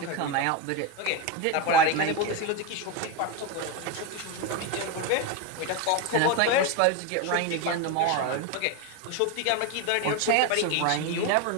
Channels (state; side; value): different; both; correlation 0.03